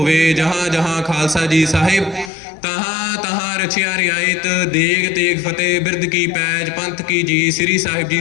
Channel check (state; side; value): drops out; right; at 2.3 s